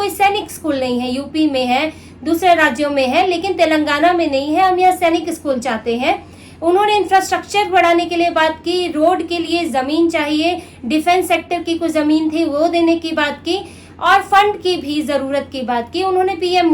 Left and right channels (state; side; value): identical; both; correlation 1.00